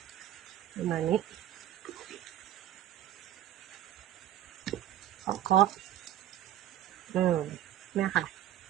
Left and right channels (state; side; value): quieter; left; 12.3 dB